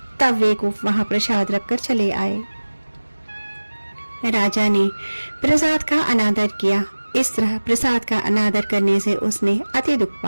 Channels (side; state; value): both; inverted; correlation -1.00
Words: तब वे गोप वहां प्रसाद रखकर चले आए। राजा ने प्रसाद का अनादर किया। इस तरह प्रसाद का अनादर करने से उसने अति दुख